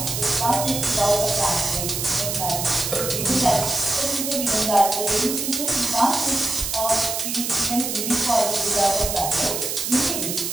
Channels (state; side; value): noise; right; hiss, 3 dB below the sound